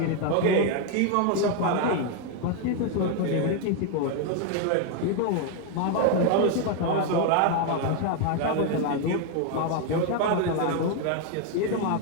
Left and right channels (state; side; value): different; both; correlation 0.01